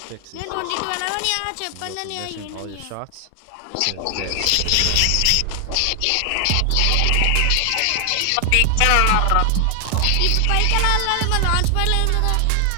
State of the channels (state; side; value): different; both; correlation 0.00